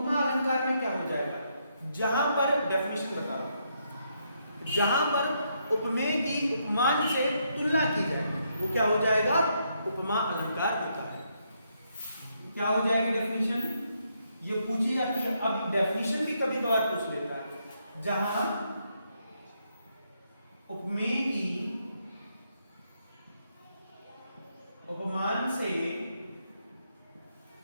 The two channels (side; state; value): both; inverted; correlation -0.77